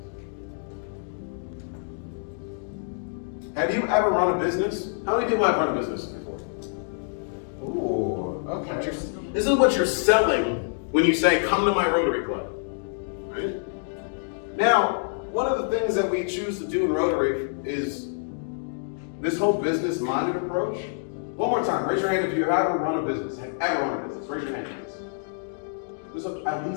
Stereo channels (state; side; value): silent; right; digital silence